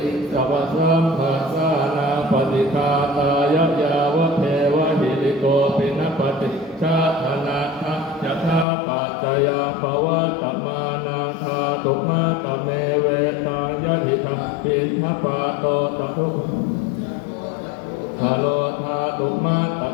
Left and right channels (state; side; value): drops out; right; at 8.7 s